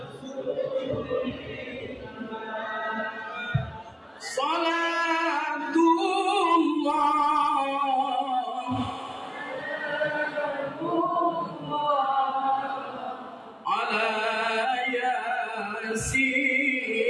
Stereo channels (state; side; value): identical; both; correlation 1.00